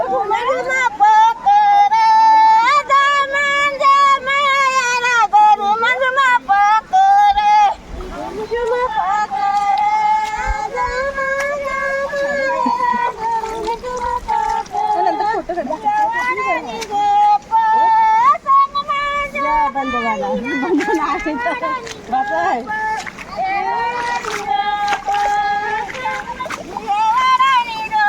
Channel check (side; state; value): both; identical; correlation 1.00